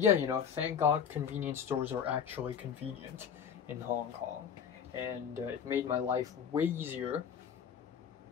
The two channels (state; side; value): quieter; right; 7.7 dB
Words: you know, thank God convenience stores are actually convenient in Hong Kong, and it made my life way easier.